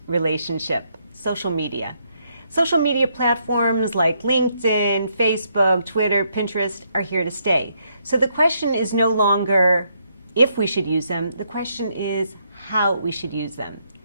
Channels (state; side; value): inverted; both; correlation -0.75